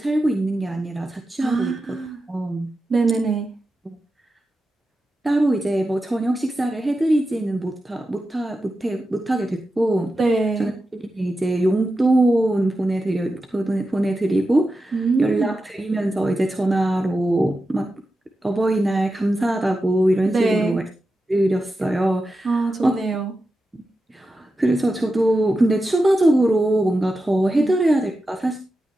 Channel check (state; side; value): normal; both; correlation 0.91